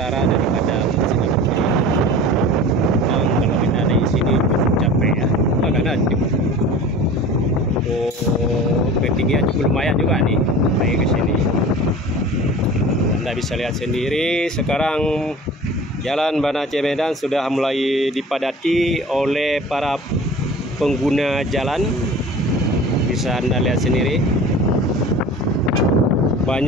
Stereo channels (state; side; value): normal; both; correlation 0.39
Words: daripada Masjid Abu. Dan kalau kita ada di sini cukup capek ya, karena ketinggian cukup lumayan juga nih naik ke sini. Anda bisa lihat sendiri sekarang Jalan Banda Aceh Medan sudah mulai dipadati oleh para pengguna jalan. Bisa Anda lihat sendiri,